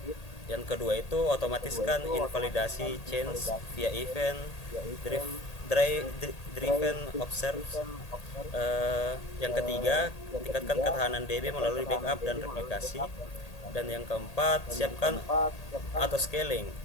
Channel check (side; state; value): right; late; 1.8 ms